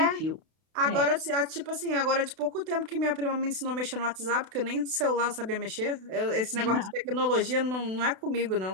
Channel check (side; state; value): left; late; 32 ms